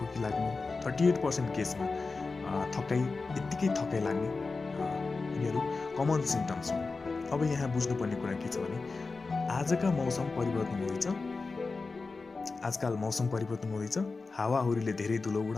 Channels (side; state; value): right; quieter; 4.0 dB